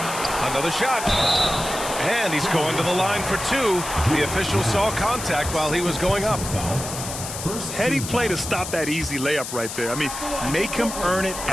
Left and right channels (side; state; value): left; noise; hiss, 8 dB below the sound